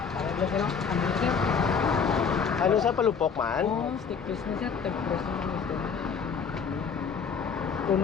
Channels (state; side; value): quieter; right; 6.1 dB